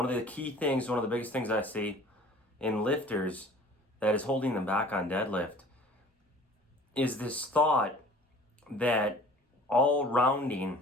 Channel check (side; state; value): both; normal; correlation 0.47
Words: of the key things, one of the biggest things I see in lifters that is holding them back on deadlift is this thought that all